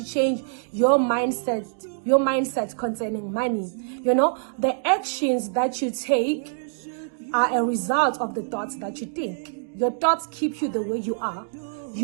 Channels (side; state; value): left; silent; digital silence